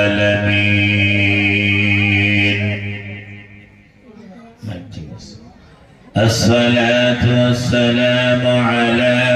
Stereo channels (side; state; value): both; identical; correlation 1.00